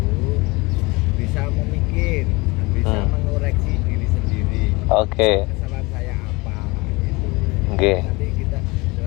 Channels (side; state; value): right; quieter; 24.4 dB